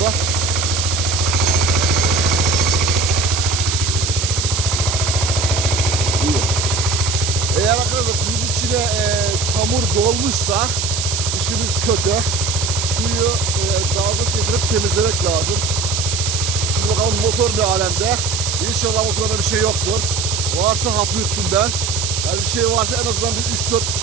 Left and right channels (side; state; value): right; noise; hiss, 2 dB below the sound